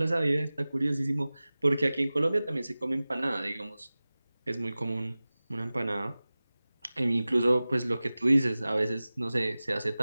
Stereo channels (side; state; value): both; inverted; correlation -0.97